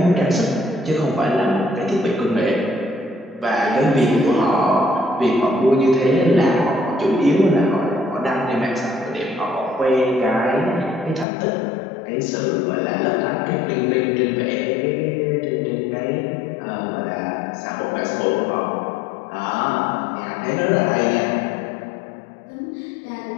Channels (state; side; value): drops out; right; at 11.2 s